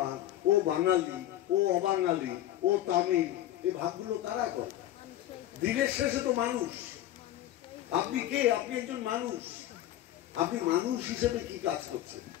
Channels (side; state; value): right; quieter; 13.2 dB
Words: ও বাঙালি, ও অবাঙালি, ও তামিল, এই ভাগগুলো কারা করে? দিনের শেষে তো মানুষ। আপনি কে? আপনি একজন মানুষ। আপনি মানুষ হিসেবে কি কাজ করছেন?